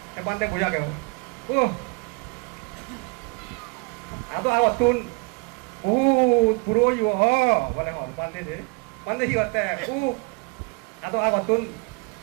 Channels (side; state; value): left; quieter; 30.4 dB